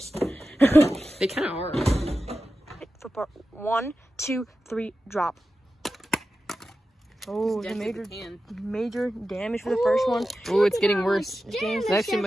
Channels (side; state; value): both; normal; correlation 0.92